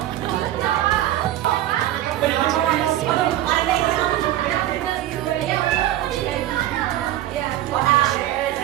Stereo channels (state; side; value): quieter; left; 13.6 dB